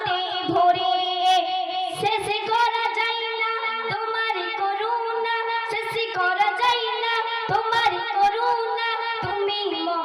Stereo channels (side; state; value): both; identical; correlation 1.00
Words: ভরে শেষ করা যায় না তোমার করুণা শেষ করা যায় না তোমার করুণা তুমি